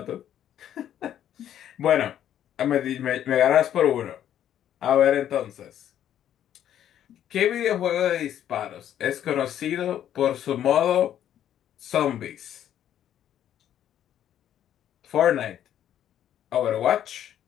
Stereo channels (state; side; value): quieter; right; 10.7 dB